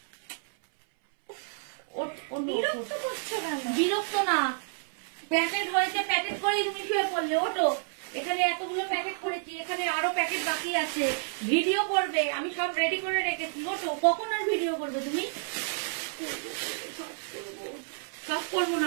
বিরক্ত করছো কেন? বিরক্ত না, প্যাকেট হয়েছে, প্যাকেট করেই তুমি শুয়ে পড়লে। ওঠো, এখানে এতগুলো প্যাকেট করেছি, এখানে আরো প্যাকেট বাকি আছে, ভিডিও করবে, আমি সব রেডি করে রেখেছি। ওঠো, কখন আর ভিডিও করবে তুমি? সব করবো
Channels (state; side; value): silent; left; 58 dB below the other